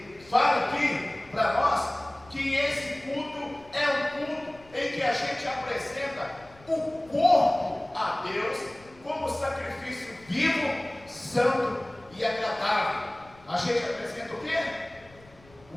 fala aqui para nós que esse culto é um culto em que a gente apresenta o corpo a Deus como sacrifício vivo, santo e agradável. A gente apresenta o quê?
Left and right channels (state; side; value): noise; left; rumble, 26 dB below the sound